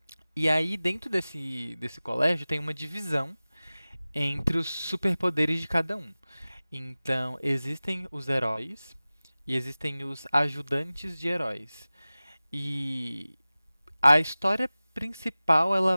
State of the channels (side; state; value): both; inverted; correlation -0.98